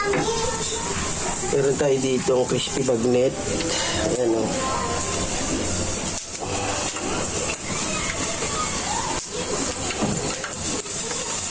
Meron tayo ditong crispy bagnet. Ayan, o.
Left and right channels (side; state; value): both; identical; correlation 1.00